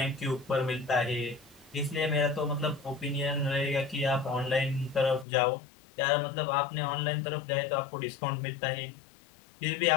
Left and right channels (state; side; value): drops out; right; at 5.2 s